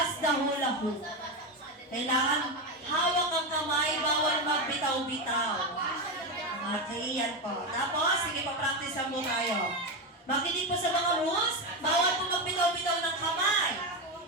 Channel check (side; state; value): both; normal; correlation 0.13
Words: the hula hoop. Kailangan hawak ang kamay, bawal magbitaw-bitaw. Okay, yan po. Tapos, sige pa practice mo tayo. Makinig po sa mga rules, bawal po magbitaw-bitaw ng kamay.